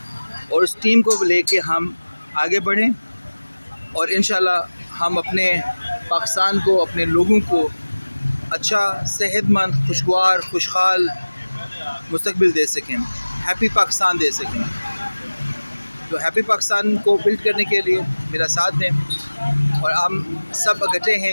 और उस टीम को लेके हम आगे बढ़ें और इंशाल्लाह हम अपने पाकिस्तान को, अपने लोगों को अच्छा, सेहतमंद, खुशगवार, खुशहाल मुस्तकबिल दे सकें, हैप्पी पाकिस्तान दे सकें। तो हैप्पी पाकिस्तान को बिल्ड करने के लिए मेरा साथ दें और हम सब इकट्ठे हैं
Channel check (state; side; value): inverted; both; correlation -1.00